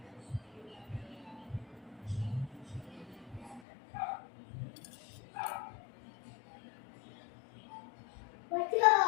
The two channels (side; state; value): right; drops out; at 3.6 s